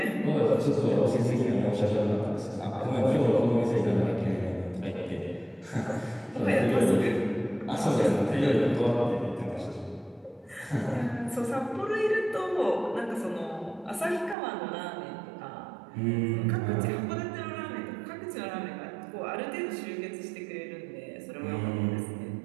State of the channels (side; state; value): left; drops out; at 14.4 s